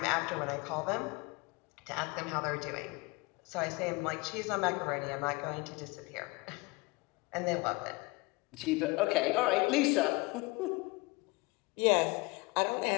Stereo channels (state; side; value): quieter; right; 25.5 dB